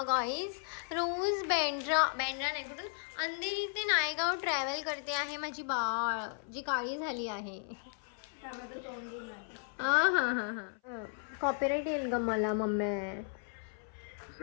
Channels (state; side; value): silent; right; 54 dB below the other